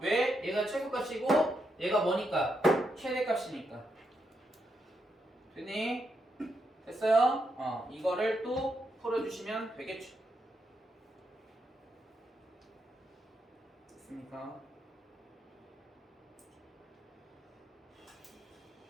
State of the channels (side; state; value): both; normal; correlation 0.82